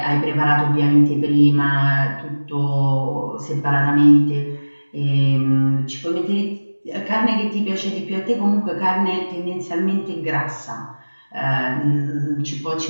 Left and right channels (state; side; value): inverted; both; correlation -1.00